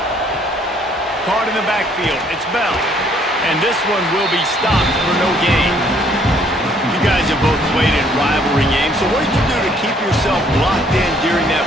Caught in the backfield, it's Bell. And this one will be stopped for no gain. You guys have both played in rivalry games, so what did you do to keep yourself locked in during that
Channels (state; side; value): normal; both; correlation 0.63